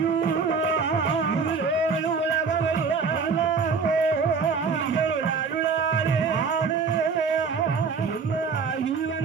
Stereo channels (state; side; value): quieter; left; 5.2 dB